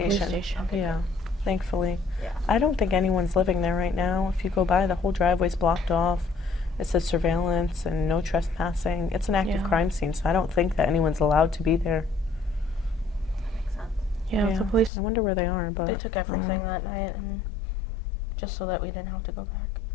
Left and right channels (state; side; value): drops out; right; at 14.9 s